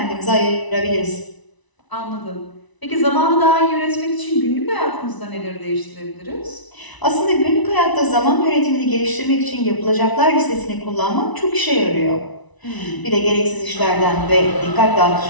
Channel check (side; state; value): right; late; 1.0 ms